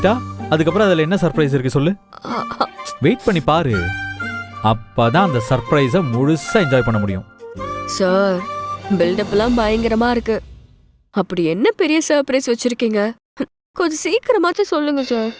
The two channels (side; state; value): both; identical; correlation 1.00